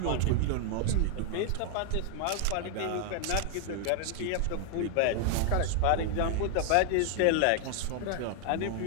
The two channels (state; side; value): different; both; correlation 0.00